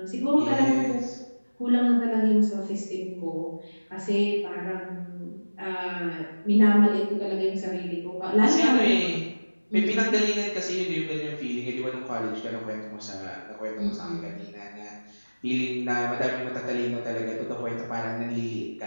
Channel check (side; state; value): both; inverted; correlation -1.00